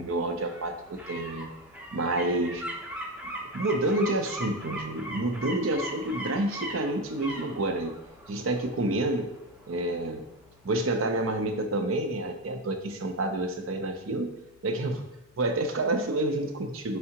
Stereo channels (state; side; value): noise; left; hum, 30 dB below the sound